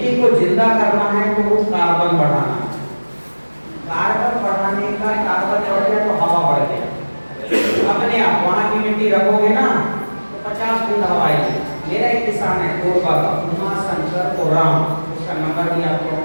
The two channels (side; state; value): both; inverted; correlation -1.00